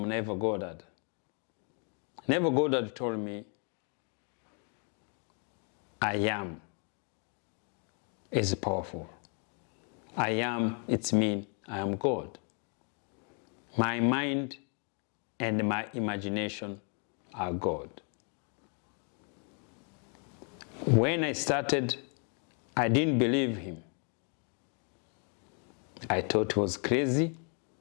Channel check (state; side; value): quieter; right; 39.7 dB